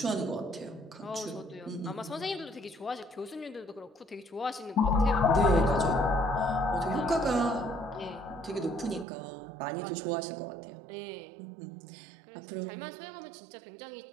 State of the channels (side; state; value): left; drops out; at 9.1 s